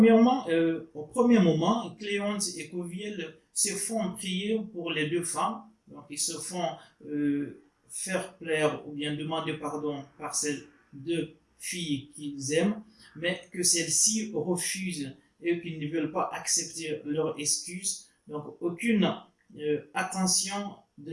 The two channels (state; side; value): identical; both; correlation 1.00